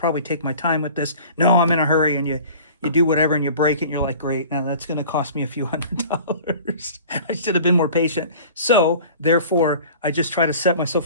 take my time with this. No, I'm in a hurry, and you do whatever and you break it, and you're like, great, now that's going to cost me a few $100s. I should have been more patient. So therefore, I just try to set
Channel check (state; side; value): inverted; both; correlation -0.43